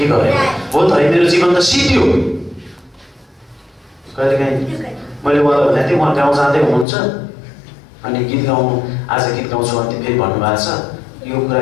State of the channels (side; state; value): right; drops out; at 6.9 s